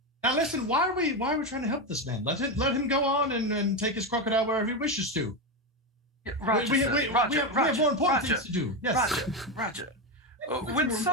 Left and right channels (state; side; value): normal; both; correlation 0.12